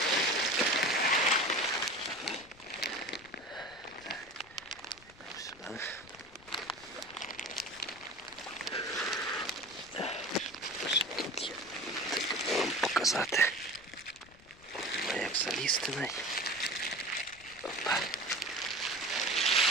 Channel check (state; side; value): noise; left; rumble, 24 dB below the sound